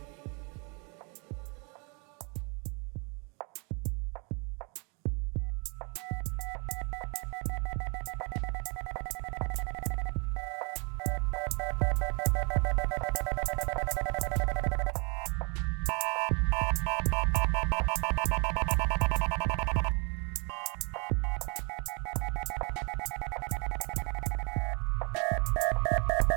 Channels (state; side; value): quieter; left; 33.6 dB